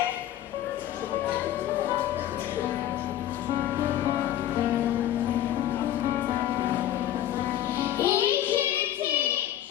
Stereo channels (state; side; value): quieter; right; 12.3 dB